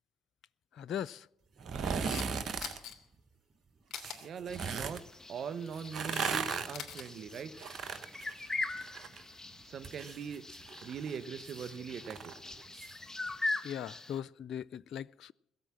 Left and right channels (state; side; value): normal; both; correlation 0.70